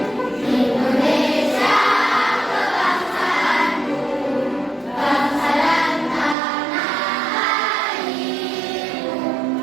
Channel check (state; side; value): drops out; left; at 6.4 s